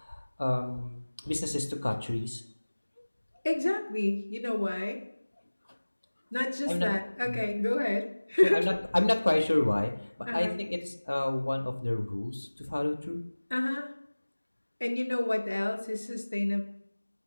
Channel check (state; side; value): inverted; both; correlation -1.00